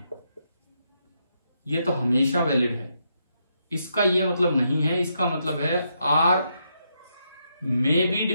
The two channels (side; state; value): both; inverted; correlation -0.79